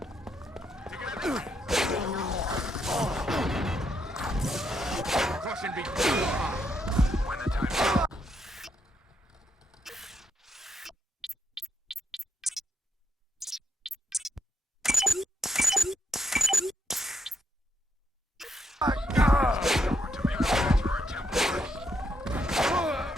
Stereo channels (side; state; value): both; normal; correlation 0.78